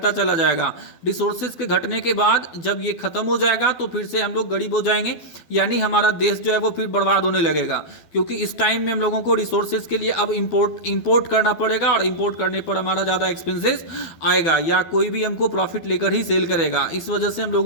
चला जाएगा। रिसोर्सेज के घटने के बाद जब ये खत्म हो जाएगा तो फिर से हम लोग गरीब हो जाएंगे, यानी हमारा देश जो है वो फिर बर्बाद होने लगेगा, क्योंकि इस टाइम में हम लोगों को रिसोर्सेज के लिए अब इम्पोर्ट करना पड़ेगा और इम्पोर्ट करने पर हमारा ज़्यादा एक्सपेंसेस आएगा या कोई भी हमको प्रॉफिट लेकर ही सेल करेगा। इस वजह से हम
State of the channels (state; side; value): late; right; 12 ms